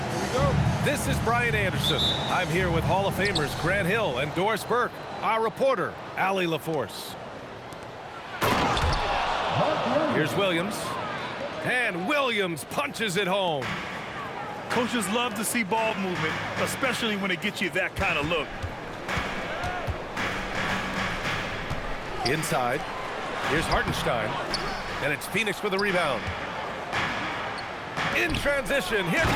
This is Brian Anderson. I'm here with Hall of Famers Grant Hill and Doris Burke. Our reporter, Allie LaForce. Here's Williams. And Williams punches it home. Coaches love to see ball movement, especially when it gets you that kind of look. Inside. Here's Hartenstein. And it's Phoenix with a rebound. In transition, here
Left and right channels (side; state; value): both; identical; correlation 1.00